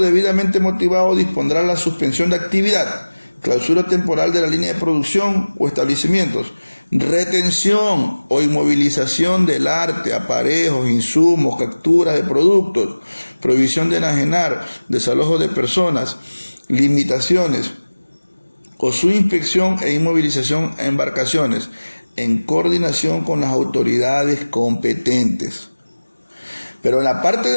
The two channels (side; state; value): both; inverted; correlation -1.00